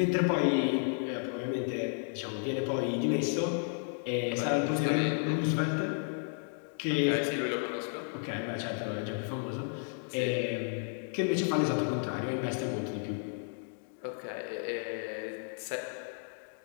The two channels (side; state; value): right; silent; 56 dB below the other